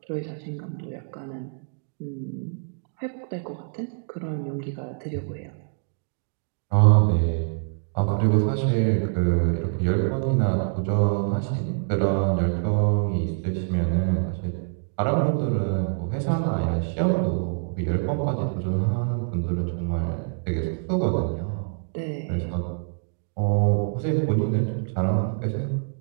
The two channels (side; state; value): left; silent; digital silence